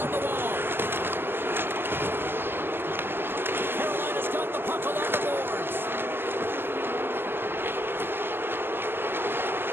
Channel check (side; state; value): left; late; 0.10 ms